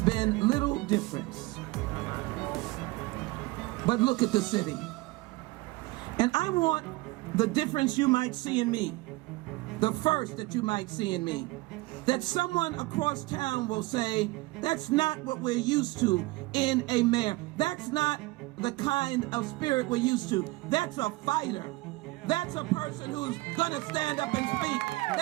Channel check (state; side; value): quieter; left; 21.4 dB